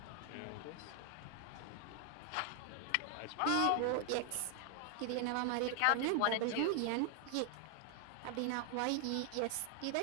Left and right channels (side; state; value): both; different; correlation 0.00